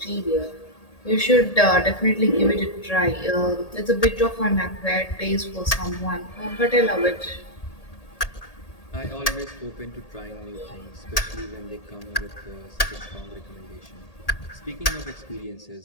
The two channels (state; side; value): late; right; 1.8 ms